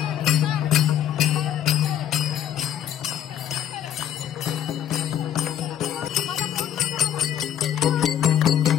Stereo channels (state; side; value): quieter; right; 10.3 dB